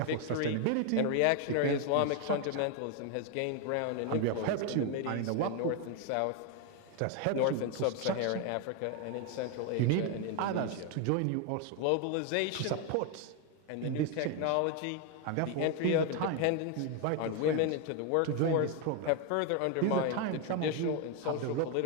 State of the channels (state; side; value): different; both; correlation 0.01